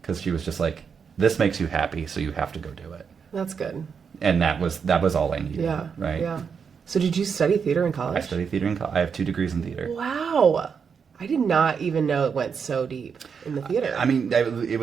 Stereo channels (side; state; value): left; quieter; 6.3 dB